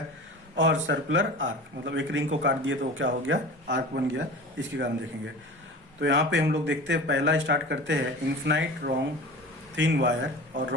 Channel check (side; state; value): both; normal; correlation 0.36